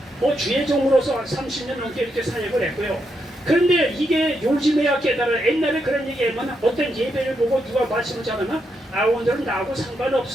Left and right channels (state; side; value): normal; both; correlation 0.81